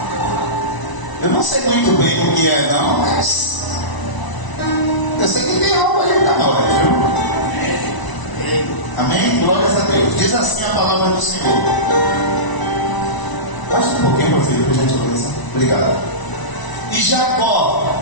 Eu não sei muito bem o que é não, mas eu sei que tem algo aí para nós, viu? Amém? Glórias a Deus. Diz assim a palavra do Senhor. Baixa um pouquinho, meu filho, por gentileza. Obrigado. E Jacó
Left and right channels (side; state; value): right; late; 1.0 ms